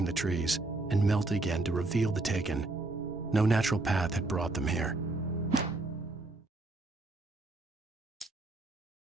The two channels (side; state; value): left; quieter; 3.0 dB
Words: the trees and melted again to reveal the Taken. No natural path had brought them here.